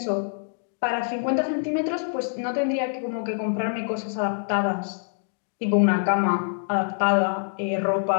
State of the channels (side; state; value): right; silent; digital silence